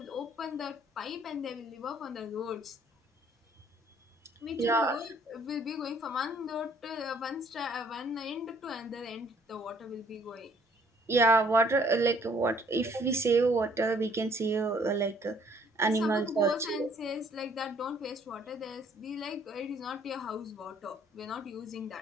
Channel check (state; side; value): normal; both; correlation 0.61